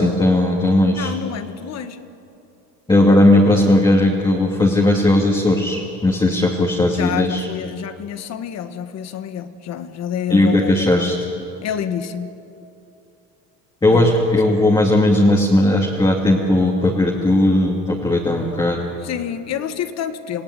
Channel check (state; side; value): normal; both; correlation 0.73